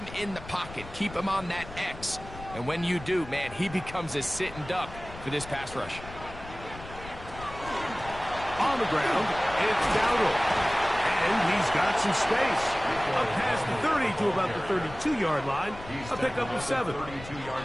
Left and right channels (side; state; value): left; noise; rumble, 15 dB below the sound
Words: in the pocket. Keep him on that X. And when you do, man, he becomes a sitting duck for this pass rush. On the ground, it's Dowdle. And he's got some space. Up past the 30 to about the 32-yard line. A pickup of 7.